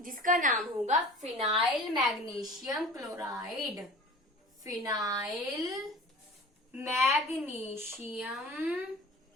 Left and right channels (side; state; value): both; normal; correlation 0.41